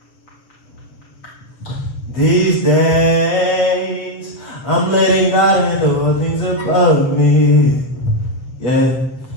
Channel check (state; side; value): late; right; 7.3 ms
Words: These days, I'm letting God handle all things above me. Yeah,